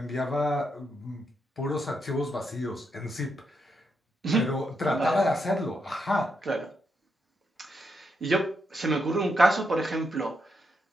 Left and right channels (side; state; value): both; normal; correlation 0.81